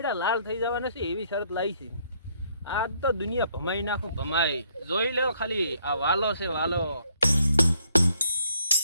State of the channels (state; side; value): inverted; both; correlation -0.69